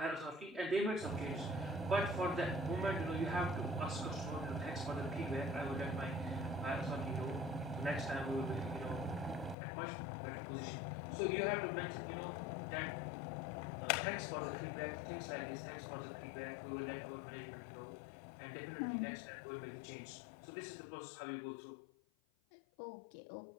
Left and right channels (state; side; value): drops out; right; at 9.6 s